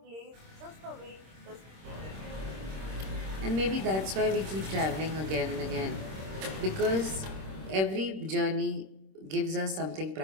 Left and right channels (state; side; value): late; left; 26 ms